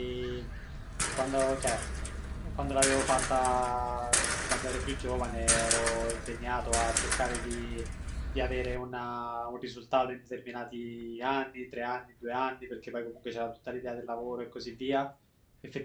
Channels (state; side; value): identical; both; correlation 1.00